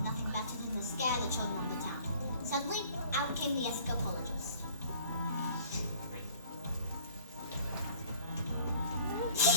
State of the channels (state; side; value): inverted; both; correlation -0.51